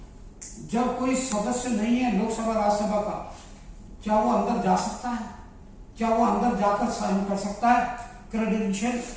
जब कोई सदस्य नहीं है लोकसभा राज्यसभा का, क्या वो अंदर जा सकता है? क्या वो अंदर जाकर साइन कर सकता है? क्रेडेंशियल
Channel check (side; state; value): both; identical; correlation 1.00